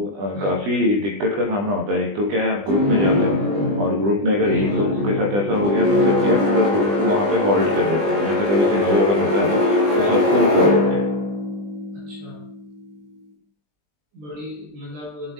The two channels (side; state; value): left; late; 20 ms